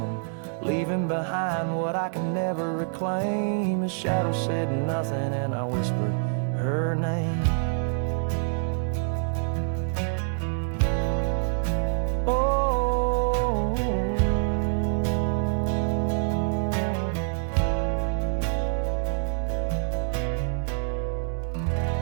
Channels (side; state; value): left; silent; digital silence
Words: leaving behind what I can never reclaim. His shadow said nothing, and I whispered her name. Oh,